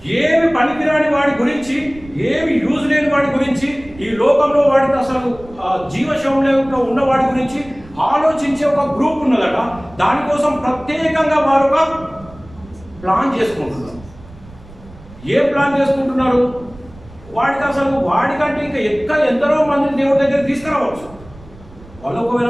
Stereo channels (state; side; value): noise; right; rumble, 21 dB below the sound